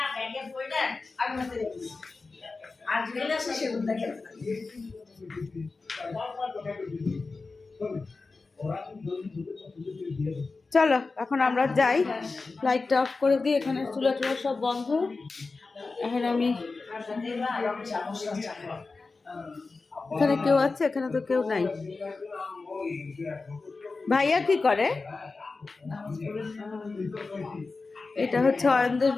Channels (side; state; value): right; quieter; 3.9 dB